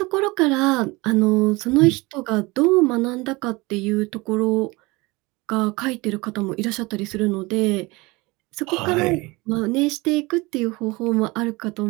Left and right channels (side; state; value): left; quieter; 23.6 dB